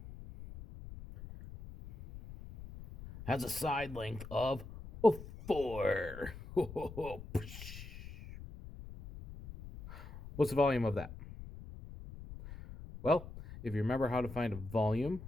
has a side length of 4. What's the volume of that? Well, if you remember how to find a volume,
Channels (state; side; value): noise; left; rumble, 13 dB below the sound